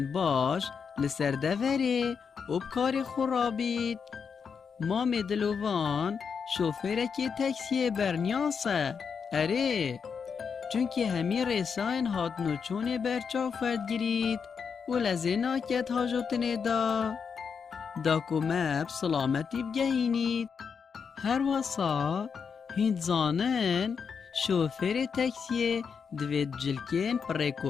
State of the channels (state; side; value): quieter; right; 6.2 dB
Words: باش لسر دوره و کار خورابید. مام دلوان شوفره که تاکسی برنیاسه. اره چونکه همی رساین هات نوچون برچا فرد گرید و لزینا کت حاجتنه دا کمب سلامتی بگهینید. هر واسا هند زانن شوفر تاکسی دوید جلکین